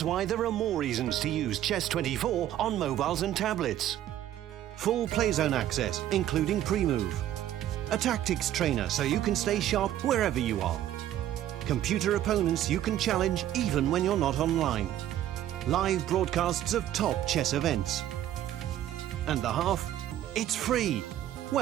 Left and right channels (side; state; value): left; quieter; 12.3 dB